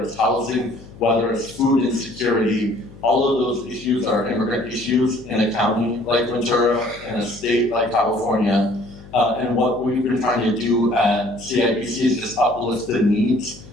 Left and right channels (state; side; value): noise; left; hum, 20 dB below the sound